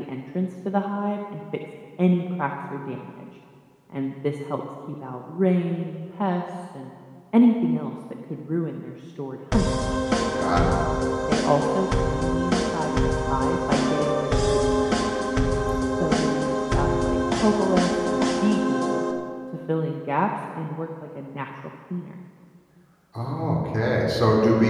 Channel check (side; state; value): both; identical; correlation 1.00